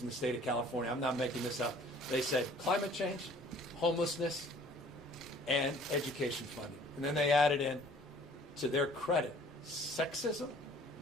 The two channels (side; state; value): both; normal; correlation 0.53